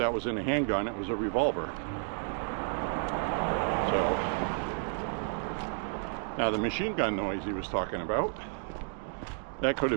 was in a handgun, it was a revolver. So, now the machine gun noise he was talking about, that could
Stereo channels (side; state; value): left; silent; 57 dB below the other